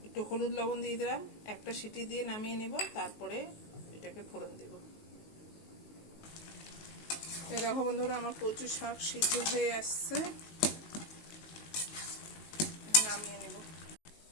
একটু হলুদ লবণ দিয়ে দিলাম, একটা সিটি দিয়ে নামিয়ে নিব, তারপরে এটাকে ফোড়ন দেব। দেখো বন্ধুরা, আমার কচু শাক সিদ্ধ হয়ে আসছে, নামিয়ে নেব।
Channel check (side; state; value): right; late; 19 ms